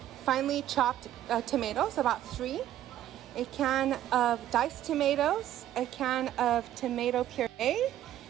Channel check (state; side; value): quieter; left; 12.3 dB